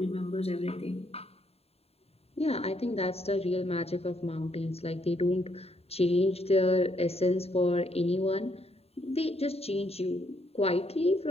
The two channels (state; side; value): late; right; 0.29 ms